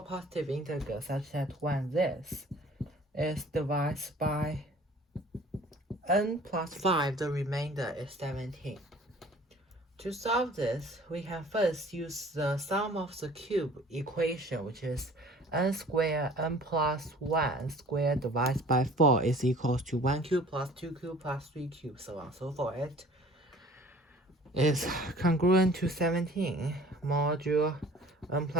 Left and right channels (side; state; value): both; normal; correlation 0.49